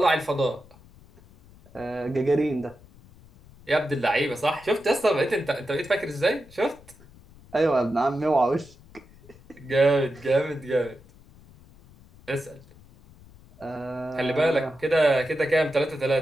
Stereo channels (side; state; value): left; noise; rumble, 24 dB below the sound